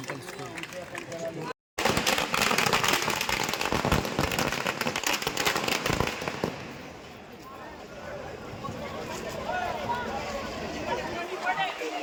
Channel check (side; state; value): both; identical; correlation 1.00